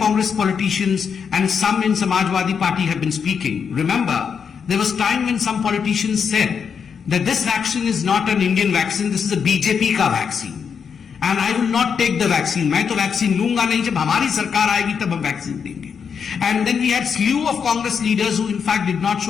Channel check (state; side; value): quieter; right; 6.6 dB